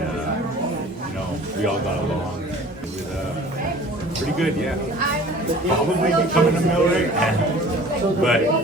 we all got along. It was pretty good, yeah. Probably becoming a Millwright, but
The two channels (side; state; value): both; normal; correlation 0.46